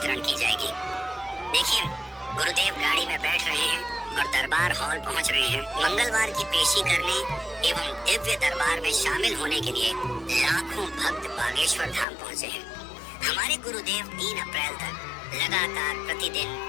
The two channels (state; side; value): drops out; right; at 12.1 s